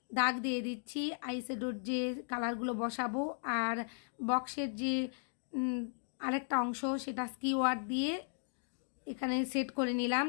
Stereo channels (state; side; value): silent; right; digital silence